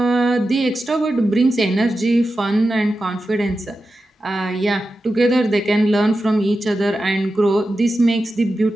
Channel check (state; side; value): normal; both; correlation 0.91